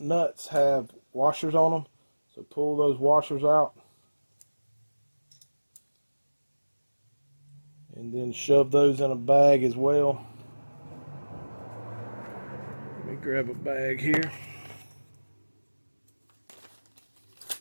have washers on them, so pull those washers out and then shove those in a bag as well. Let me grab a bag here.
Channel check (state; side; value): inverted; both; correlation -1.00